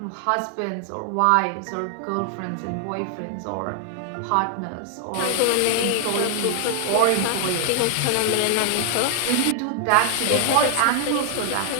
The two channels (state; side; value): different; both; correlation 0.00